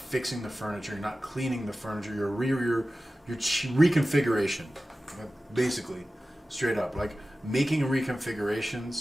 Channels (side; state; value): both; normal; correlation 0.95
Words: the furniture. You're not cleaning the furniture. Your reconfiguration, basically, straight up. Like making